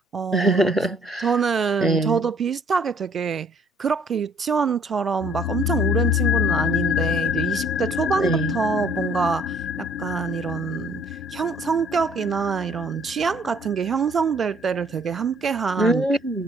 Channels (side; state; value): both; normal; correlation 0.60